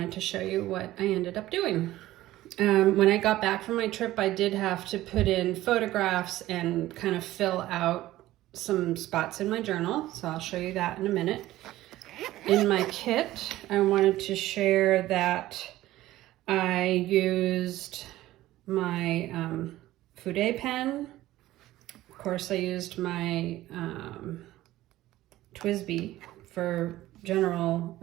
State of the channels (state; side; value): quieter; left; 15.7 dB